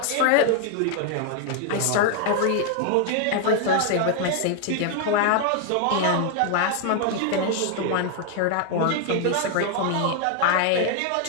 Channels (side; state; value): both; different; correlation 0.00